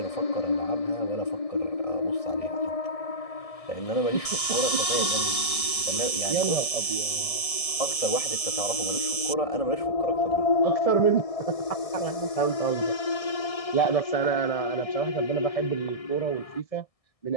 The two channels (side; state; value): right; late; 1.7 ms